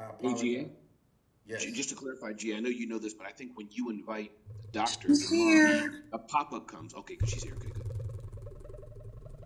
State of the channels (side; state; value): both; identical; correlation 1.00